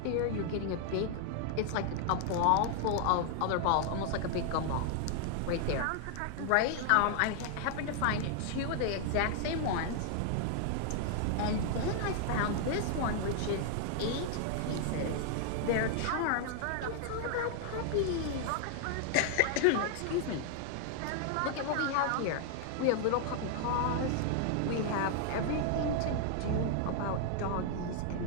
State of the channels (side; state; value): both; different; correlation 0.00